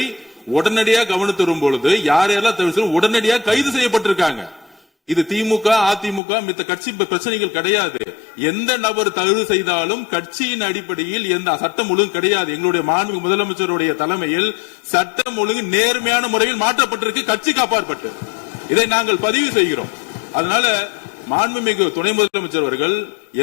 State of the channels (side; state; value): right; drops out; at 6.2 s